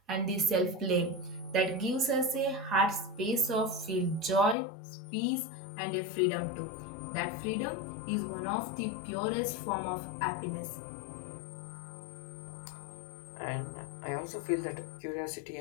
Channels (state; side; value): drops out; right; at 4.5 s